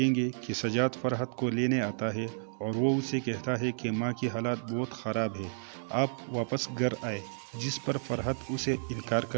گے کہ سجاد فرحت کو لینے آتا ہے اور وہ اسے کہتا ہے کہ ماں کی حالت بہت خراب ہے، آپ واپس گھر آئے، جس پر فرحت اسے انکار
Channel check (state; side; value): silent; left; digital silence